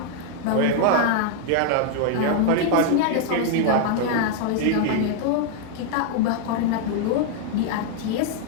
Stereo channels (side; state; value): both; different; correlation 0.00